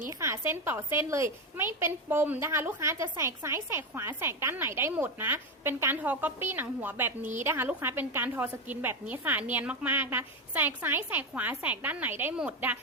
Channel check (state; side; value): normal; both; correlation 0.12